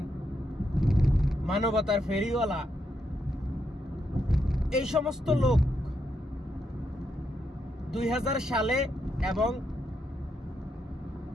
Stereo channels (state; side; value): normal; both; correlation 0.81